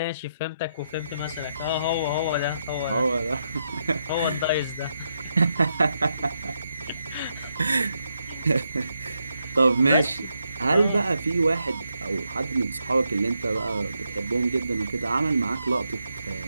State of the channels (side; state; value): both; inverted; correlation -0.81